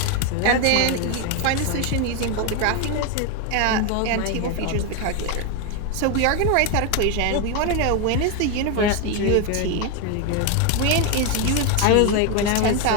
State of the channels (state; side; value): different; both; correlation 0.02